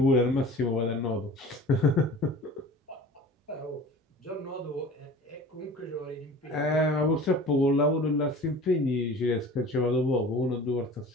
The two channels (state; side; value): normal; both; correlation 0.41